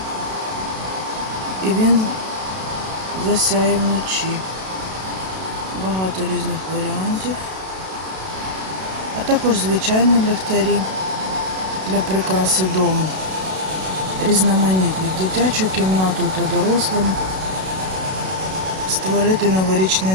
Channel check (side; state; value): left; late; 32 ms